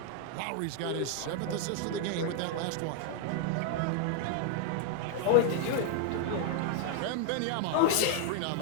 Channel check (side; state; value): both; different; correlation 0.00